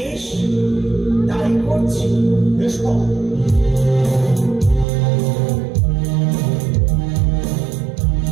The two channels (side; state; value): left; drops out; at 4.9 s